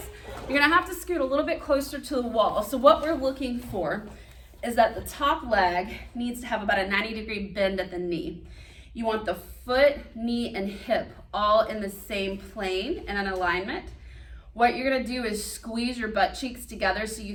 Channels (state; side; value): identical; both; correlation 1.00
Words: you're gonna have to scoot a little bit closer to the wall. So what we're looking for is that the top leg needs to have about a 90-degree bend at the knee. You want the foot, knee, and hip all in the same plane and in alignment. What you're gonna do is squeeze your butt cheeks together so